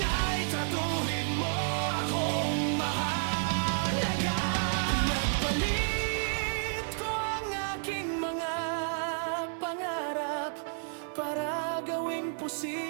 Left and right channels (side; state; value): left; silent; digital silence